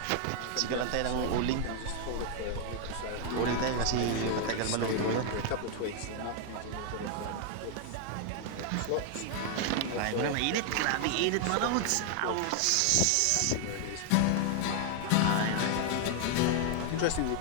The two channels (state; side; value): different; both; correlation 0.00